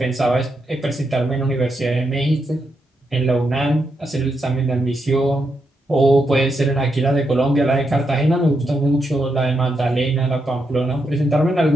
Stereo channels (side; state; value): both; normal; correlation 0.82